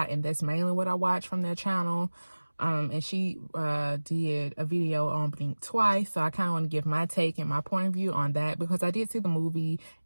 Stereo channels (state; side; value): inverted; both; correlation -1.00